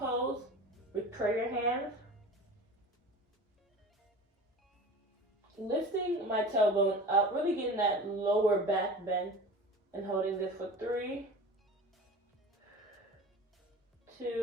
with prayer hands. Lifting my tailbone up, really getting that lower back bend, and holding this for 3,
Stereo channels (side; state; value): both; normal; correlation 0.36